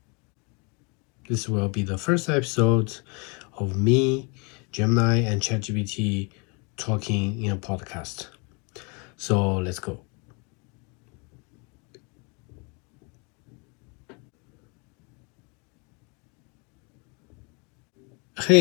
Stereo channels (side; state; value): right; quieter; 32.2 dB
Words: This will be the first episode of me, Gemini, and ChatGPT talking in a podcast. So let's go.